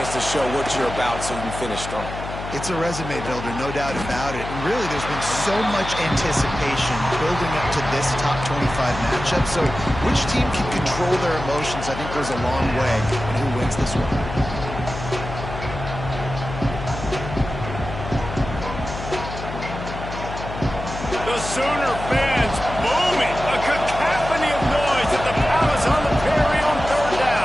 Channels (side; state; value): left; noise; hum, 9 dB below the sound